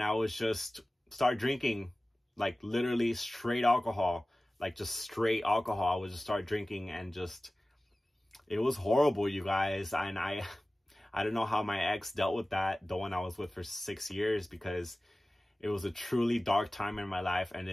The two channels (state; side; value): normal; both; correlation 0.97